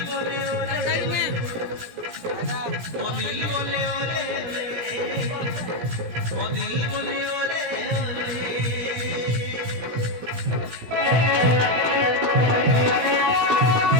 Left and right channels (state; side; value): late; left; 17 ms